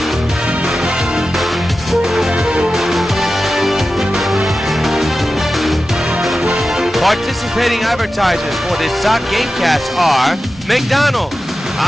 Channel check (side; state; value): both; normal; correlation 0.93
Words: Participating advertisers for this Sox Gamecast are McDonald's,